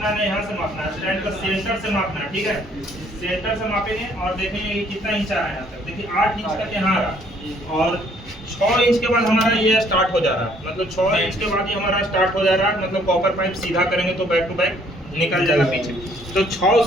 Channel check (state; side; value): normal; both; correlation 0.63